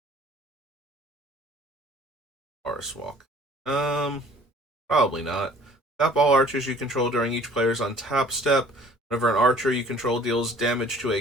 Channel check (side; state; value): both; normal; correlation 0.51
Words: Forest Walk. Probably not. Tap all archers you control during each player's untap step. Whenever an archer you control deals damage to